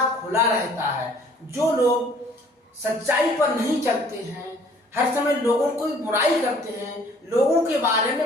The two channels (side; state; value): both; normal; correlation 0.56